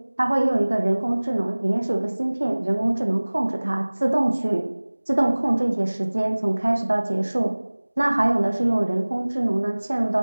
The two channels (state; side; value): inverted; both; correlation -1.00